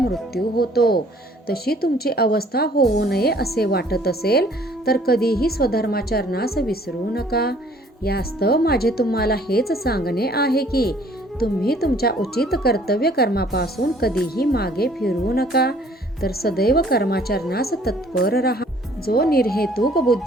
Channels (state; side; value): normal; both; correlation 0.57